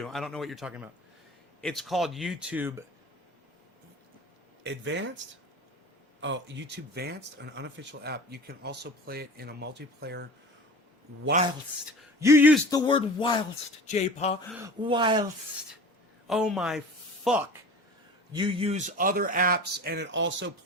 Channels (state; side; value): normal; both; correlation 0.38